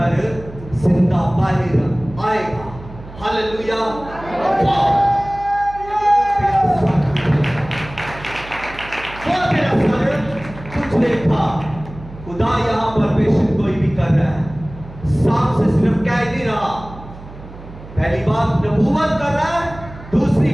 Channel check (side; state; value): right; noise; hum, 16 dB below the sound